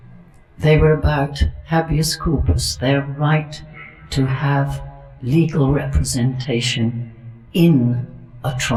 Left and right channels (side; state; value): both; identical; correlation 1.00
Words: They were about habeas corpus, their right to have legal representation in a